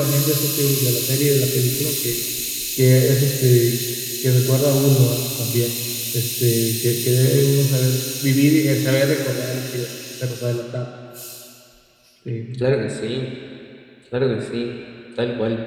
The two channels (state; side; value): identical; both; correlation 1.00